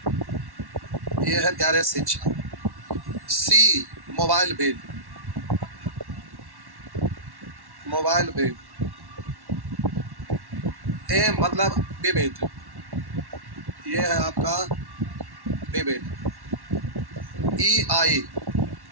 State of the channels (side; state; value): left; late; 1.1 ms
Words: ये है प्यारे शिक्षा। C मोबाइल बिल, ए मतलब विविध, ये है आपका विविध। EI